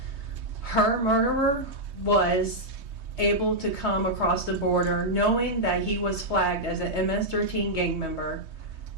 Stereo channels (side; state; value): left; late; 3.2 ms